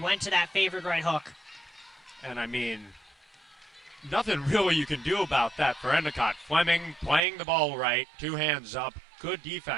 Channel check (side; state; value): left; drops out; at 7.2 s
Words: to that favored right hook. And I mean, nothing really you can do about that for Endicott. Fleming playing the ball right, 2 hands up, good